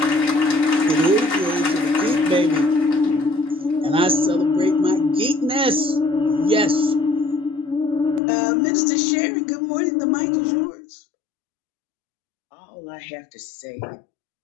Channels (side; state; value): right; drops out; at 8.2 s